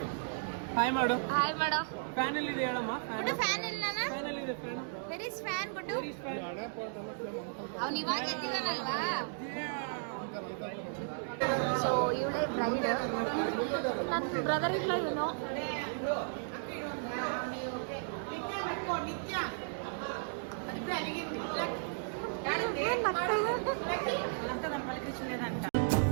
ಹಾಯ್ ಮಾಡು, ಹಾಯ್ ಮಾಡೋ. ಫ್ಯಾನ್ ಅಲ್ಲಿ ಇದೆ ಹೇಳಮ್ಮ. ಫ್ಯಾನ್ ಇಲ್ಲ, ಫ್ಯಾನ್ ಅಲ್ಲಿ ಇದೆ. ಫ್ಯಾನ್ ವೆರಿ ಫ್ಯಾನ್ ಗುಡು. ಅವನು ಇವಾಗ ಎದ್ದಿದ್ದಾನಲ್ವಾ. ಸೊ ಇವಳೇ ಬ್ರೈಡ್, ನನ್ನ ಬ್ರದರ್ ಇಲ್ಲ ಇವನು.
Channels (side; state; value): left; silent; digital silence